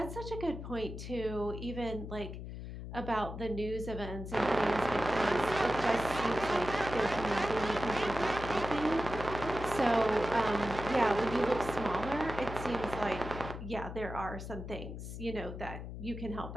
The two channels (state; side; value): noise; left; hum, 9 dB below the sound